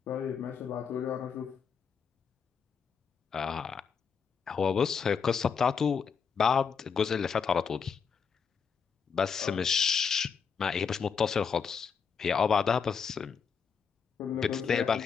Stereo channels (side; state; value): right; quieter; 6.3 dB